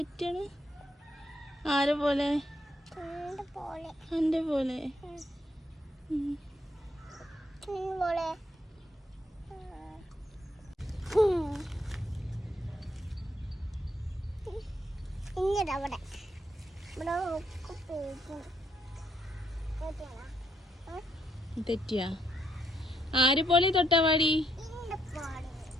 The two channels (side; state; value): both; normal; correlation 0.74